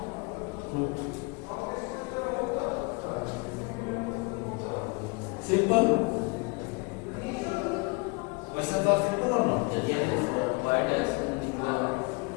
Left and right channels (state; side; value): quieter; right; 29.6 dB